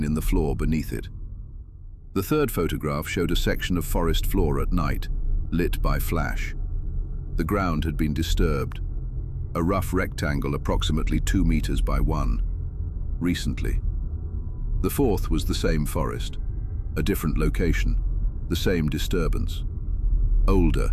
in the floor beneath it. The third photograph showed a section of forest floor at night, lit by flash. The ground had been disturbed, a rough rectangle approximately 2 meters by 1, recently. The fourth was the same forest, a different location, the same disturbance. Older,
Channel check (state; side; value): identical; both; correlation 1.00